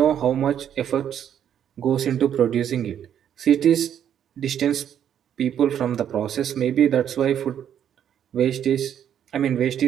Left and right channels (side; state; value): left; quieter; 9.5 dB